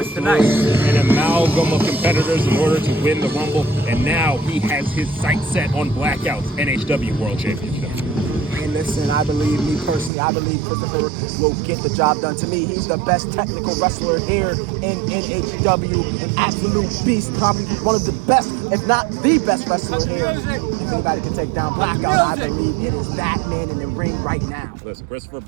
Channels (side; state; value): left; drops out; at 10.1 s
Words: through an amalgam of competitors in order to win the Rumble, and now he has his sights set on Blackout's NHW World Championship. And listen, I believe Christopher will get the job done. To me, he's the best technical wrestler here in NHW. An absolute beast, probably one of the best, if not the best wrestler here. If anybody can take down Blackout, I believe it is that man in the ring right now. Listen, Christopher